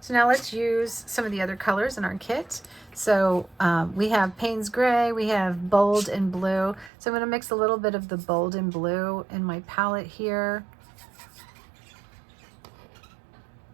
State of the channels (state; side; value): drops out; left; at 6.9 s